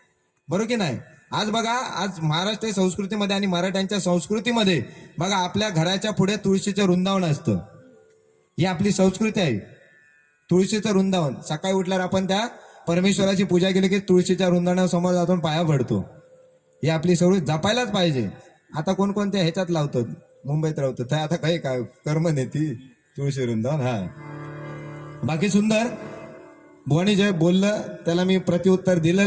बरोबर की नाही. आज बघा, आज महाराष्ट्र संस्कृतीमध्ये आणि मराठ्यांच्या संस्कृतीमध्ये बघा, आपल्या घराच्या पुढे तुळशीचं वृंदावन असतं. ही आपली संस्कृती आहे, तुळशीचं वृंदावन. सकाळी उठल्यावर आपण त्या परमेश्वराची पूजा केली की तुळशीच्या वृंदावनासमोर जाऊन पाया पडतो. ही आपली संस्कृती जपायलाच पाहिजे. आता कोणकोणत्या ह्याच्यात लावतात, मुंबईत राहतात, तर आता काही काय कर्म नेती तुळशी वृंदावन. हा, बाकी सुंदर. बुवानी जे बोललं त्याला मी प्रत्युत्तर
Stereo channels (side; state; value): both; identical; correlation 1.00